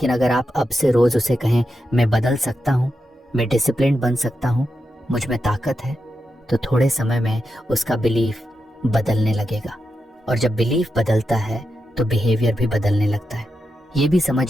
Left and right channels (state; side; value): normal; both; correlation 0.87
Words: अगर आप अब से रोज उसे कहें मैं बदल सकता हूं, मैं डिसिप्लिन बन सकता हूं, मुझ में ताकत है, तो थोड़े समय में उसका बिलीफ बदलने लगेगा। और जब बिलीफ बदलता है तो बिहेवियर भी बदलने लगता है। ये भी